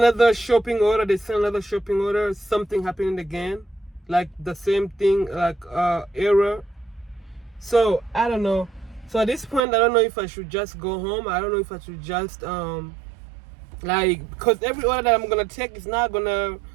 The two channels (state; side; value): drops out; left; at 9.7 s